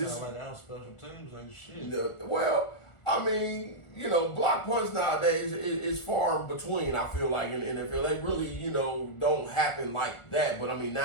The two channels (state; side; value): late; right; 1.4 ms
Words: sound like our special teams ain't shit. Well, I mean, you know, block punts nowadays is far in between, I feel like, in the NFL. They really, you know, don't happen like that. But, I mean,